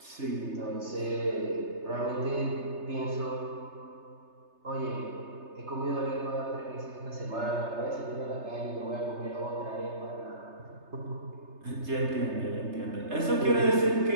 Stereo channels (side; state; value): left; late; 3.3 ms